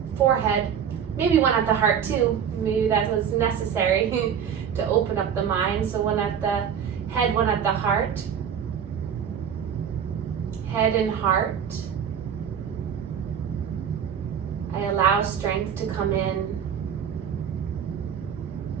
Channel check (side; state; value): left; quieter; 8.1 dB